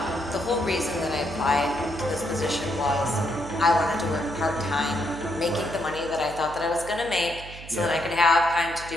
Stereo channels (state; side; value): noise; right; hum, 15 dB below the sound